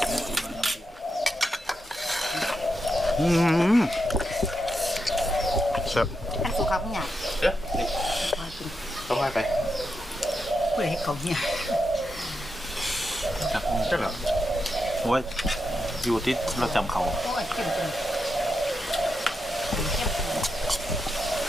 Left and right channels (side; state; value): both; normal; correlation 0.85